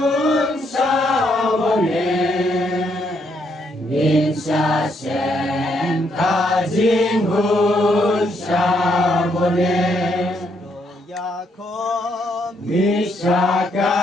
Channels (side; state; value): both; normal; correlation 0.74